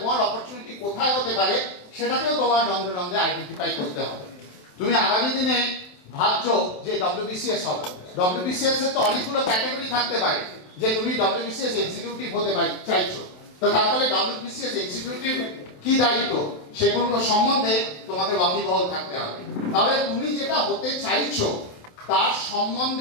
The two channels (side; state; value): right; late; 27 ms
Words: অপরচুনিটি কোথায় হতে পারে সেটাকেও তোমার রন্ধে রন্ধে আইডেন্টিফাই করতে হবে। তুমি আগামী দিনে ভাবছো যে ডব্লিউবিসিএস হবে, ডব্লিউবিসিএস এর তো অনেকগুলো ক্যাটাগরি থাকতে পারে, যে তুমি ডব্লিউবিসিএস এক্সিকিউটিভ হতে চাইছো, তো তাহলে ডব্লিউবিসিএস এক্সিকিউটিভ কি দায়িত্ব সেগুলো সম্বন্ধে তোমাকে ওয়াকিবহাল থাকতে হবে। তাহলে তুমি যেটা হতে চাইছো তার